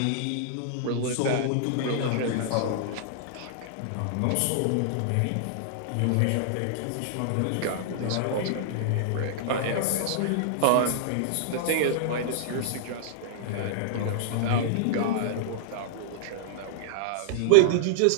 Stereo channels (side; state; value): both; different; correlation -0.01